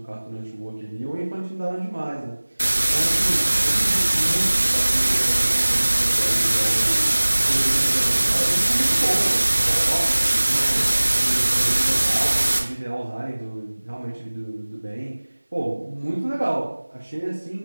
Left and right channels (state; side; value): inverted; both; correlation -1.00